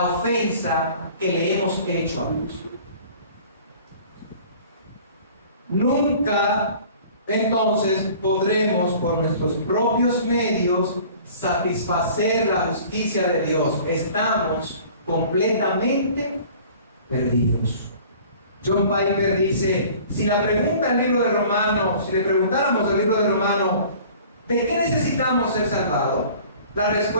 ofensa que le hemos hecho a Dios. nunca entonces podremos por nuestros propios medios satisfacer la justicia de Dios. Estamos completamente perdidos. John Piper dice, si le preguntáramos al libro de Romanos, ¿de qué necesitamos ser salvados? La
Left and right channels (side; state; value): both; inverted; correlation -0.47